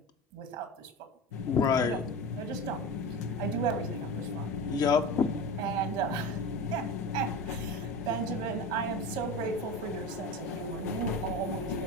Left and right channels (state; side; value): normal; both; correlation 0.28